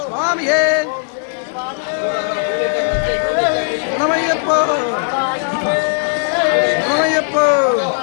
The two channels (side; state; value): right; silent; digital silence